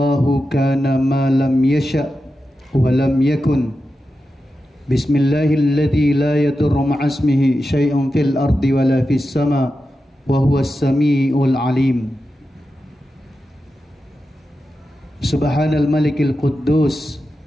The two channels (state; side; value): normal; both; correlation 0.91